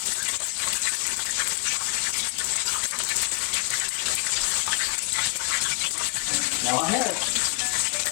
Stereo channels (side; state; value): right; quieter; 24.5 dB